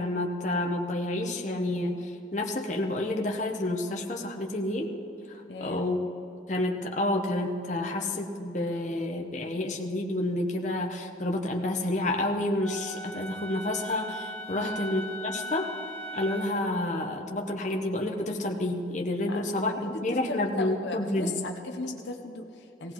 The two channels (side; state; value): both; normal; correlation 0.46